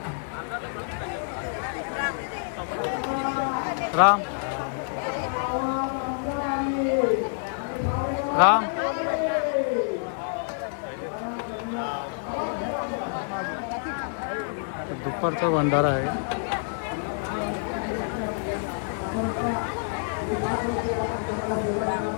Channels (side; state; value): right; silent; digital silence